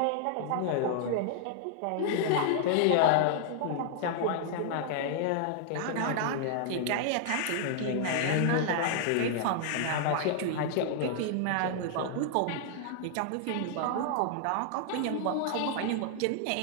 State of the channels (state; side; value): different; both; correlation -0.01